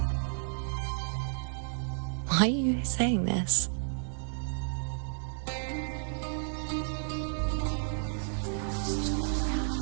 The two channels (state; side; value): silent; left; digital silence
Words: Why are you saying this?